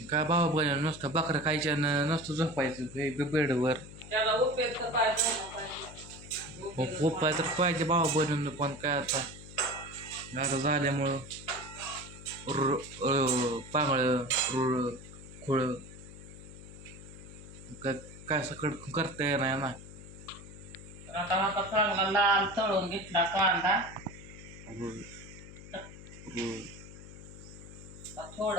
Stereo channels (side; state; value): left; noise; hum, 15 dB below the sound